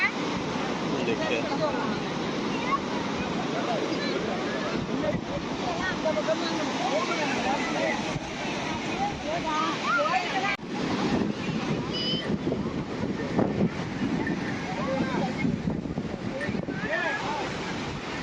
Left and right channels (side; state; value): both; identical; correlation 1.00